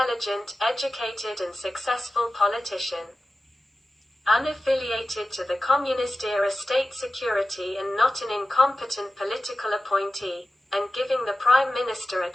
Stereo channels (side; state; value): both; normal; correlation 0.93